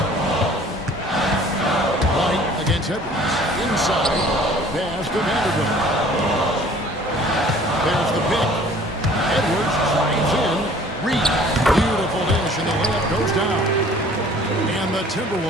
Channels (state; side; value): normal; both; correlation 0.51